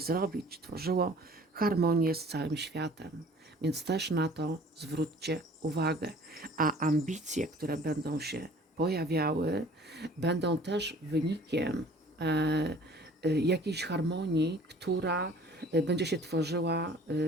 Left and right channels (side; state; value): both; normal; correlation 0.50